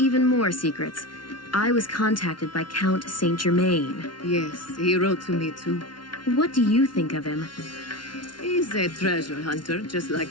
more secrets. I was contacted by Count Saint Germain. Yes, he wrote to me too. What do you think of him? He's a treasure hunter, just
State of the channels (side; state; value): right; late; 0.71 ms